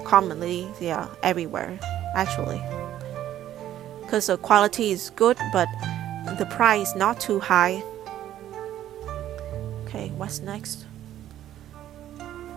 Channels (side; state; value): left; quieter; 12.1 dB